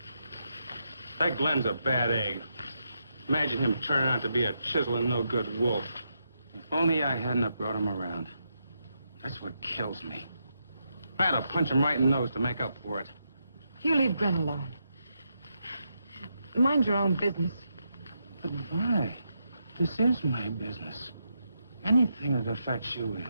That Glenn's a bad egg. Imagine him turning out to be a chiseling, no-good wolf. If only I hadn't have brought him around. That's what kills me. I had to punch him right in the nose to make up for it. You leave Gren alone. Mind your own business. But why? This is my business. Anything that affects you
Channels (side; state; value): both; inverted; correlation -0.82